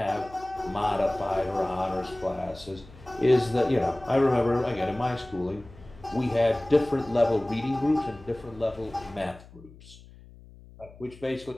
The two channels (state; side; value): noise; left; hum, 21 dB below the sound